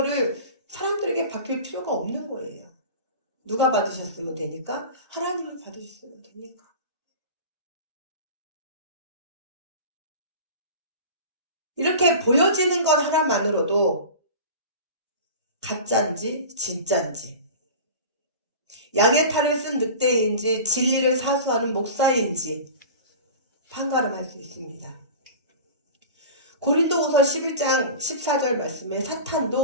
사람들에게 바뀔 필요가 없는 거예요. 누가 받으셨으면 되니까? 하나님을 받으셨으면 되니까. 이렇게 보여지는 것 하나만으로도 가짜인지 진짜인지, 양의 탈을 쓴 늑대인지 진리를 사수하는 목사인지 판가름할 수 있습니다. 고린도후서 11장 14절 말씀에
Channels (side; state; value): both; inverted; correlation -0.34